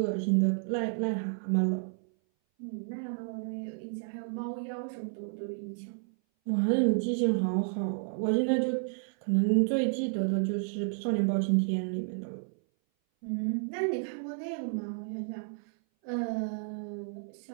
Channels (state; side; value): silent; left; 57 dB below the other